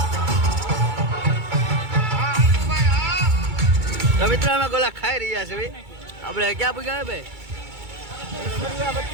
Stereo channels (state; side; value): late; left; 2.3 ms